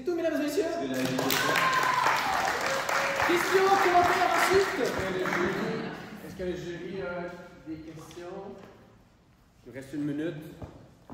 tout, mesdames et messieurs. Questions, commentaires ensuite? Est-ce que le jury a des questions? Il nous reste 1 minute.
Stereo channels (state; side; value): identical; both; correlation 1.00